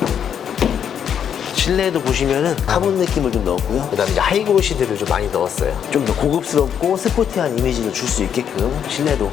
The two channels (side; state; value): right; quieter; 8.4 dB